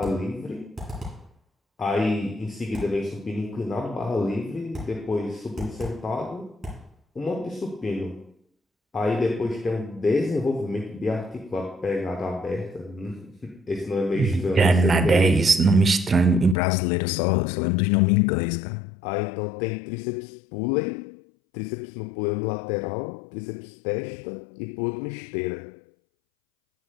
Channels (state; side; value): drops out; right; at 16.6 s